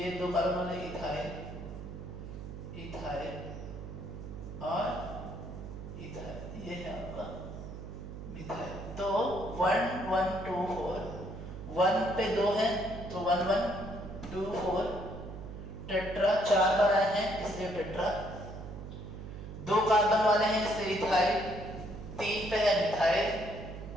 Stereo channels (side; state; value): right; noise; hum, 10 dB below the sound